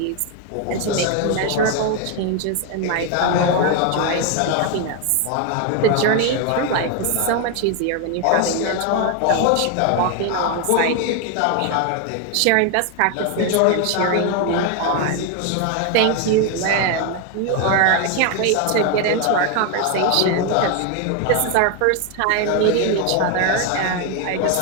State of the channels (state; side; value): different; both; correlation 0.01